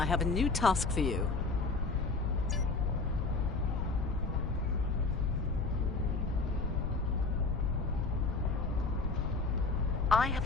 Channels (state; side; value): quieter; right; 3.9 dB